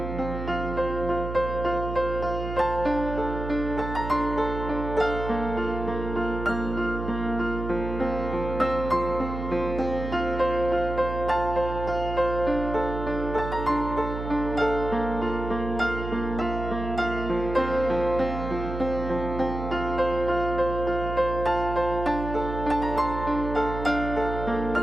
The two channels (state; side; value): noise; right; hum, 6 dB below the sound